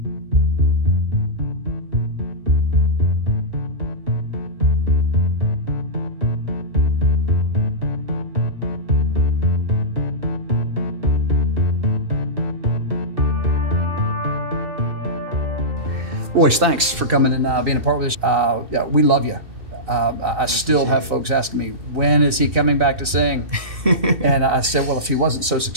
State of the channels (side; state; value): left; late; 2.6 ms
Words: Royce, thanks for coming and being a part of this. Yeah, we love you. I still have folks asking me, when is he coming back to sing? And I said, well, if he wasn't so